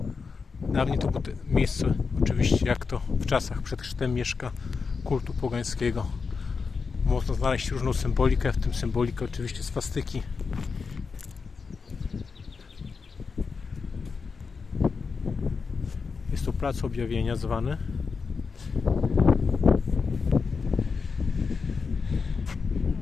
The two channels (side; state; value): right; quieter; 5.0 dB